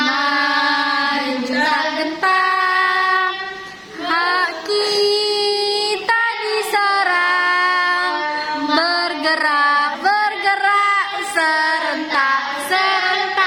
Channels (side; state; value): both; identical; correlation 1.00